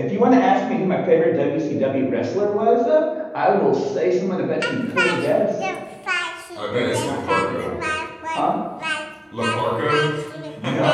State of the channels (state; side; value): identical; both; correlation 1.00